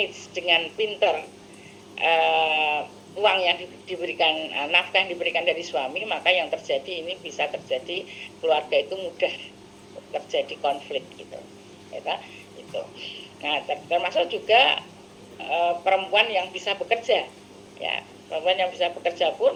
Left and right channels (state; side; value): identical; both; correlation 1.00